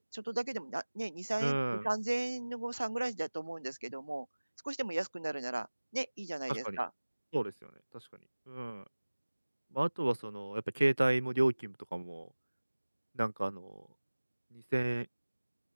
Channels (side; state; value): both; inverted; correlation -1.00